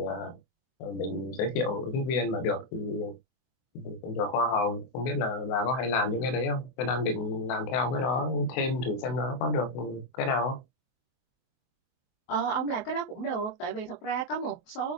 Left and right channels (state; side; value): late; right; 23 ms